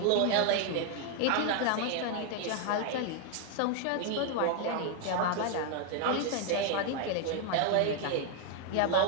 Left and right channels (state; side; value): different; both; correlation 0.00